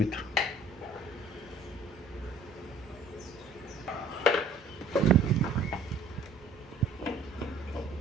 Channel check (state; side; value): normal; both; correlation 0.55